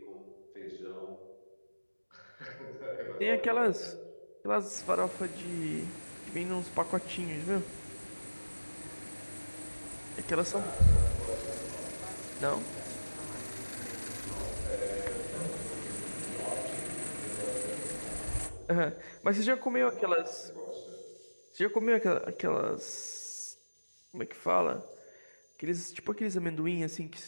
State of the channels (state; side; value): inverted; both; correlation -1.00